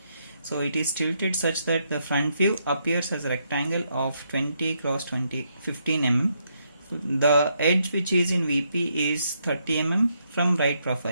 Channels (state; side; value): inverted; both; correlation -0.77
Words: So it is tilted such that the front view appears as a rectangle of 20 cross 15 mm. The edge which is in VP is 30 mm from right